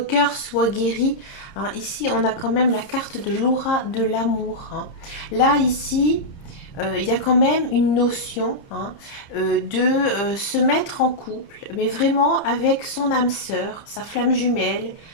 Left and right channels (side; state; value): right; late; 30 ms